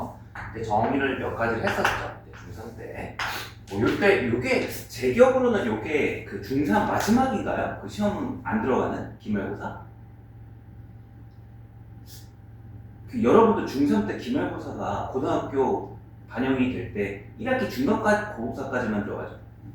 이제 정의를 몇 가지를 했었죠. 이제 중3 때. 뭐 요때 요게 제 기억으로는 요게 그 중3 마지막인가요? 그 시험은 안 들어가는 기말고사? 그 여러분도 중3 때 기말고사가 고등학교 반영이 될 때 1학기 중간까지 고고사까지만 들어가죠.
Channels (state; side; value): identical; both; correlation 1.00